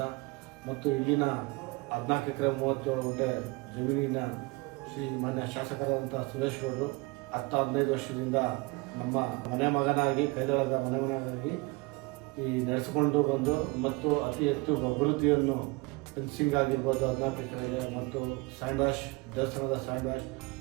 ಮತ್ತು ಇಲ್ಲಿನ 14 ಎಕರೆ 37 ಗುಂಟೆ ಜಮೀನಿನ ಶ್ರೀ ಮಾನ್ಯ ಶಾಸಕರಾದಂಥ ಸುರೇಶ್ ಗೌಡರು 10-15 ವರ್ಷದಿಂದ ನಮ್ಮ ಮನೆ ಮಗನಾಗಿ ಕೈದಳದ ಮನೆ ಮಗನಾಗಿ ಈ ನಡೆಸಿಕೊಂಡು ಬಂದು ಮತ್ತು ಅತಿ ಹೆಚ್ಚು ಅಭಿವೃದ್ಧಿಯನ್ನು ಫೆನ್ಸಿಂಗ್ ಆಗಿರ್ಬೋದು 14 ಎಕರೆಗೆ ಮತ್ತು ಸ್ಯಾಂಡ್ ವಾಶ್ ದೇವಸ್ಥಾನದ ಸ್ಯಾಂಡ್ ವಾಶ್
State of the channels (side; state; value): left; quieter; 25.1 dB